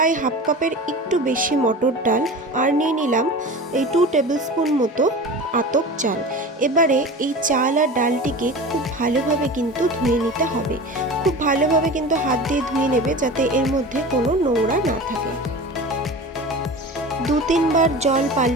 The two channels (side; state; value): both; normal; correlation 0.33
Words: হাফ কাপের একটু বেশি মটর ডাল, আর নিয়ে নিলাম এই 2 টেবিল স্পুন মতো আতপ চাল। এবারে এই চাল আর ডালটিকে খুব ভালোভাবে কিন্তু ধুয়ে নিতে হবে। খুব ভালোভাবে কিন্তু হাত দিয়ে ধুয়ে নেবে যাতে এর মধ্যে কোনো নোংরা না থাকে। 2-3 বার জল